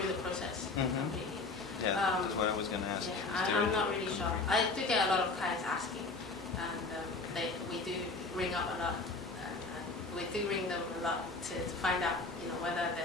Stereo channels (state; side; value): quieter; right; 3.7 dB